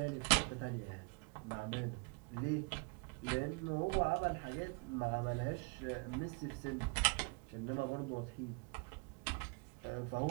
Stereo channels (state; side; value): quieter; left; 32.0 dB